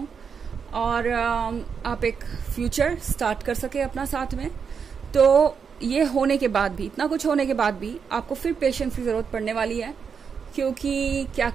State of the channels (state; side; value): quieter; left; 6.4 dB